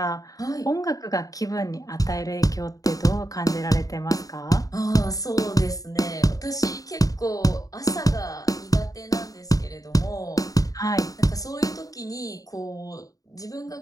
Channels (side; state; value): right; late; 0.17 ms